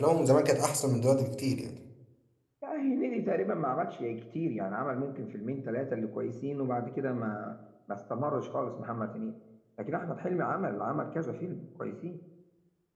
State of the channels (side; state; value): both; identical; correlation 1.00